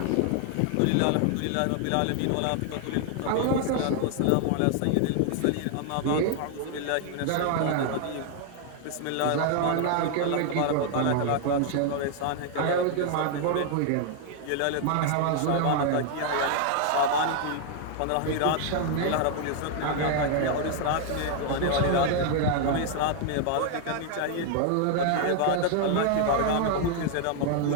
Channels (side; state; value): both; different; correlation 0.00